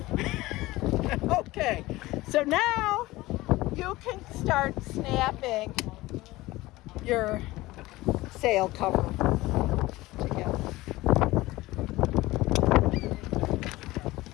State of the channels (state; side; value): quieter; right; 18.9 dB